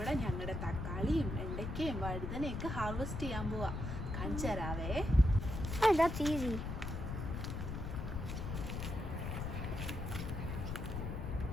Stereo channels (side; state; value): left; noise; rumble, 4 dB below the sound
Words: ഞങ്ങളുടെ തക്കാളിയും വെണ്ടയ്ക്കയും വഴുതനയൊക്കെ ഹാർവെസ്റ്റ് ചെയ്യാൻ പോവാ. കാണിച്ചു തരാവേ. That's easy.